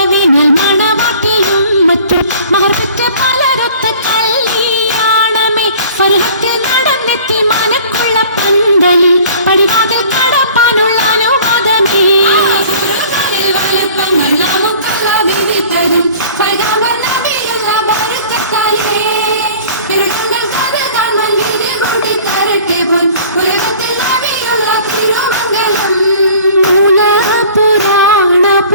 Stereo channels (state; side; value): inverted; both; correlation -0.48